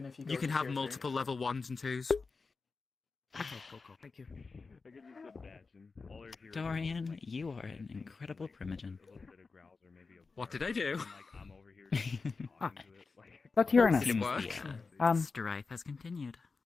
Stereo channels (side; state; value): right; quieter; 4.4 dB